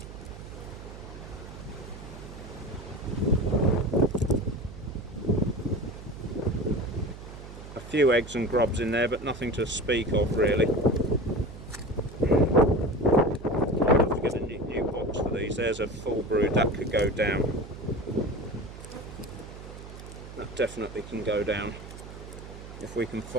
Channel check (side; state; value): right; noise; hum, 13 dB below the sound